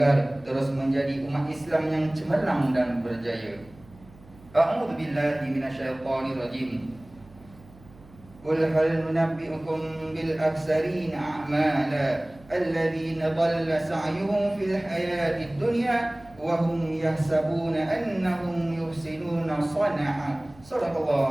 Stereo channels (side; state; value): right; noise; hum, 24 dB below the sound